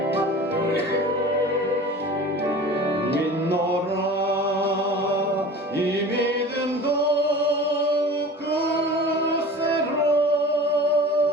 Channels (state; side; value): normal; both; correlation 0.38